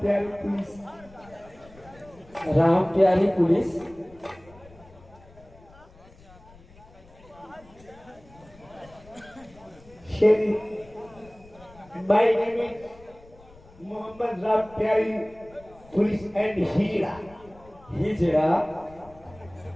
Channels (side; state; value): left; noise; rumble, 24 dB below the sound